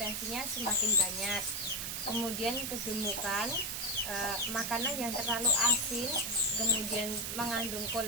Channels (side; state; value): right; noise; hiss, 3 dB below the sound